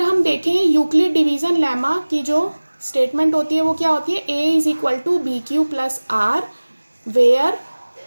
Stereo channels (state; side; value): inverted; both; correlation -1.00